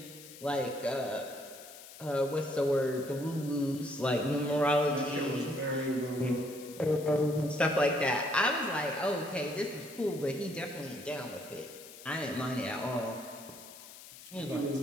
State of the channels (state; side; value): noise; left; hiss, 17 dB below the sound